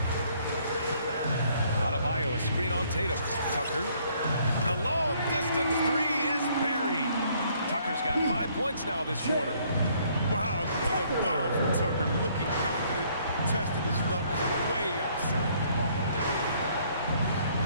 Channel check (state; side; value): inverted; both; correlation -0.64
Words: Adebayo, a screen on Tatum. Tucker. The long distance 3 is buried. Tucker's got 5 points now this quarter. Wow, what a bomb from Tucker. Looking confident, testing his luck from way outside.